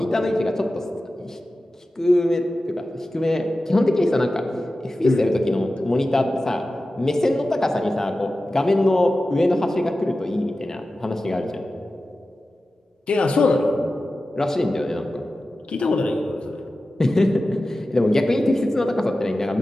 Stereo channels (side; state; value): both; normal; correlation 0.94